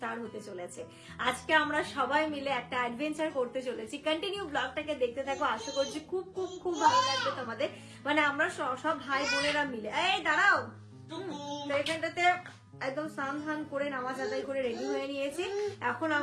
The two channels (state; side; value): identical; both; correlation 1.00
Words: হতে চলেছে। আজকে আমরা সবাই মিলে একটা অ্যাডভেঞ্চার করতে চলেছি। কন্টিনিউ ব্লগটাকে দেখতে থাকো, আশা করছি খুব খুব খুব ভালো লাগবে তোমাদের। মানে আমরা সব ভাই বোনেরা মিলে, এই দাঁড়াও, এখানটাতে একদম স্নান ধান করে নামাজ আদায় করে রেডি হয়ে নিয়েছি। এখন